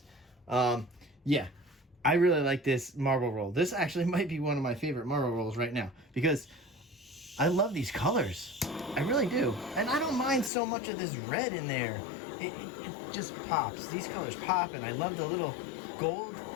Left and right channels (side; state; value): right; drops out; at 10.5 s